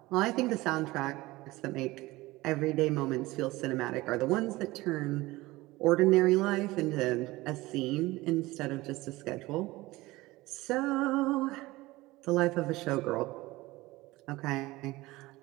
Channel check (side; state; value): left; quieter; 19.8 dB